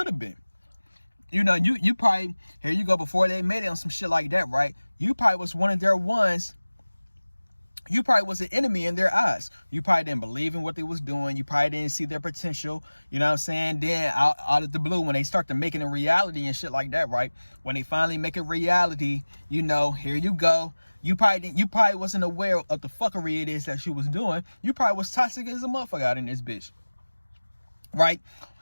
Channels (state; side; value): inverted; both; correlation -1.00